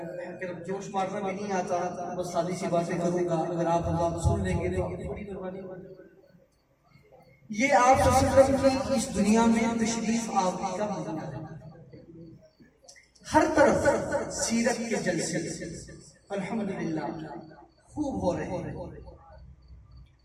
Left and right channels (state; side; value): identical; both; correlation 1.00